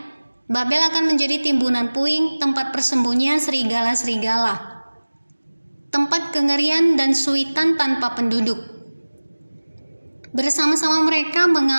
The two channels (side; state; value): both; inverted; correlation -1.00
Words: Babel akan menjadi timbunan puing, tempat persembunyian serigala-serigala, tempat kengerian dan suitan tanpa penduduk. Bersama-sama mereka